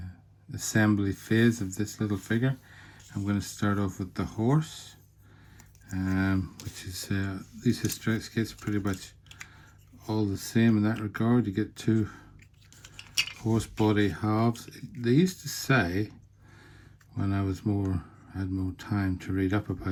assembly phase of this little figure. I'm going to start off with the horse, which is these Historex kits are pretty much all the same in that regard. You get two horse body halves. They used to say, when I had more time to read up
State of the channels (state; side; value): identical; both; correlation 1.00